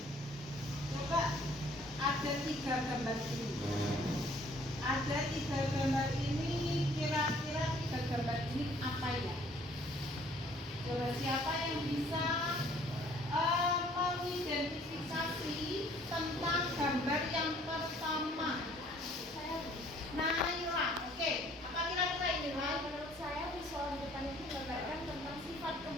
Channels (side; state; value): both; normal; correlation 0.58